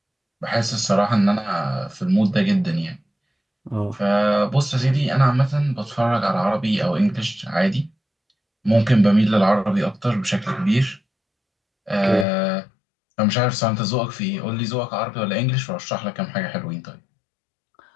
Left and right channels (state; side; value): drops out; right; at 12.2 s